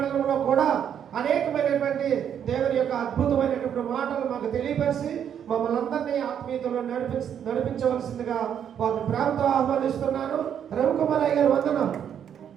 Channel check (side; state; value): left; quieter; 8.8 dB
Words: కూడా అనేకమైనటువంటి దేవుని యొక్క అద్భుతమైనటువంటి మాటలు మాకు తెలియపరిచి మమ్మల్ని అందరినీ ఆత్మీయతలో నడిపించవలసిందిగా వారిని ప్రేమతో ఆహ్వానిస్తున్నాను. రవికుమార్ అయ్య గారు వందనం.